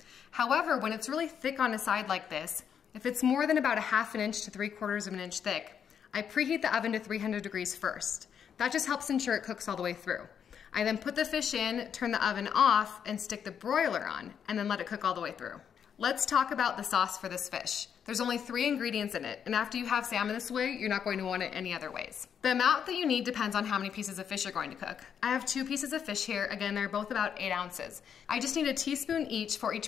However, when it's really thick on a side like this, if it's more than about 1/2 inch to 3/4 of an inch thick, I preheat the oven to 300 degrees first. That just helps ensure it cooks all the way through. I then put the fish in, turn the oven off, and stick the broiler on, and then let it cook all the way through. Let's talk about the sauce for this fish. There's only 3 ingredients in it, and after you have salmon this way, you're not going to want it any other ways. The amount that you need depends on how many pieces of fish you're going to cook. I have 2 pieces of fish here. Again, they're both about 8 ounces. I just need a teaspoon each for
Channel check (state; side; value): quieter; right; 7.9 dB